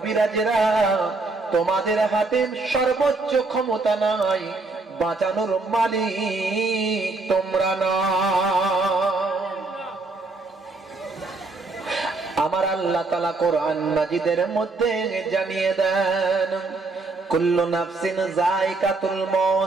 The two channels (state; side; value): quieter; left; 3.4 dB